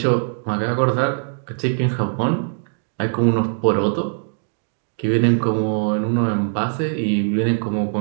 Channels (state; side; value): silent; left; digital silence